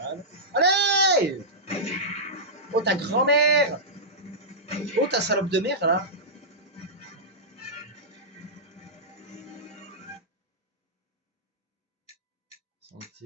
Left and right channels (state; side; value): normal; both; correlation -0.13